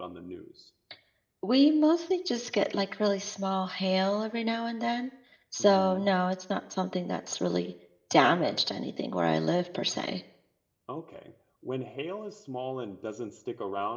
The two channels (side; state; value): both; identical; correlation 1.00